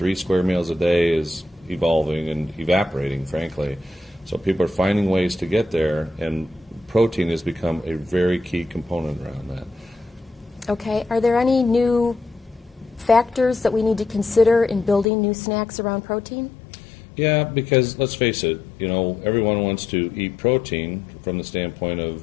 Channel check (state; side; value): drops out; right; at 15.1 s